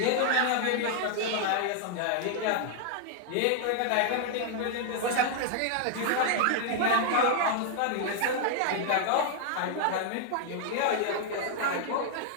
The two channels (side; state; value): both; different; correlation 0.00